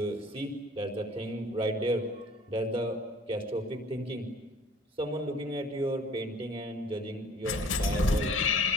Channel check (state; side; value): normal; both; correlation 0.51